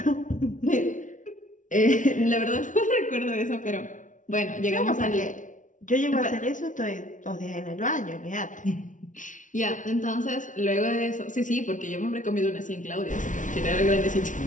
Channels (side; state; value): right; late; 0.37 ms